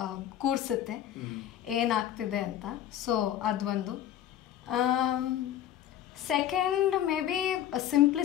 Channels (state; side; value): quieter; right; 11.4 dB